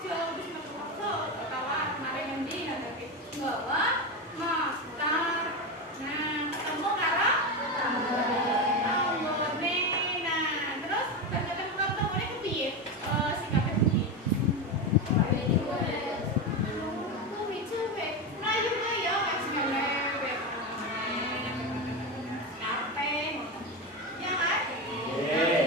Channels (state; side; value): normal; both; correlation 0.16